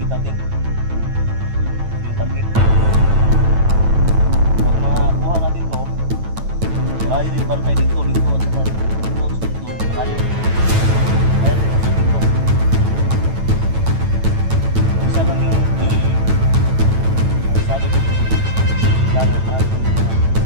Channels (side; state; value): left; late; 9.1 ms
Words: natin. Ito yung target. Pag makuha natin to, malayo yung bantay dito at saka dito, malayo. Kaya dito dito. Isa lang yung sabi ko kailangan natin